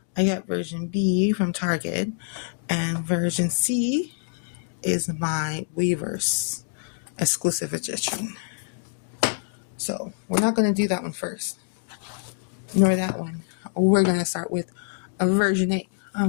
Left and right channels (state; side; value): silent; right; 61 dB below the other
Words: I got version B from Target, and version C is my Weverse exclusive edition. So we're not going to do that one first, nor that one. We're going to start with a version A